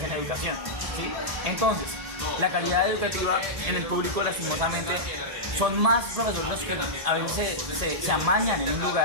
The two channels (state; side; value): late; left; 1.7 ms